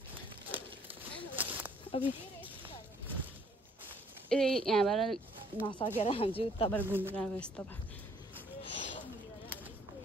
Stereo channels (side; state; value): both; normal; correlation 0.62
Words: अब यहाँबाट नसकेर हामी चाहिँ उताबाट घुमेर आएको यस्तो